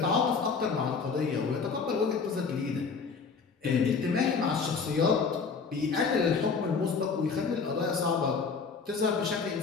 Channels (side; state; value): right; quieter; 5.2 dB